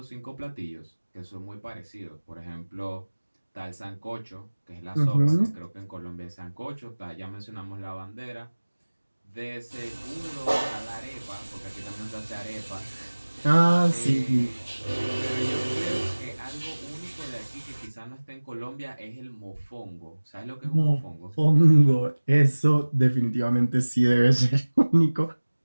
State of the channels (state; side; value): inverted; both; correlation -1.00